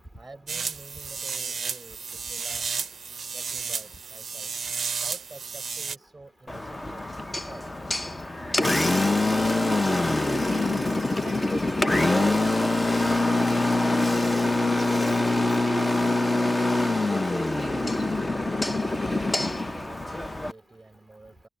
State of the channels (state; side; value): normal; both; correlation 0.94